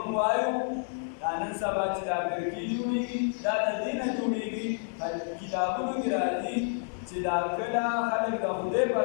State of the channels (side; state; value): right; silent; digital silence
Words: وایو دا نن سبا چې دا برګي جوړیږي دا د دې نه جوړیږي کتابونو کې راځي چې دا کله خلک د خدای په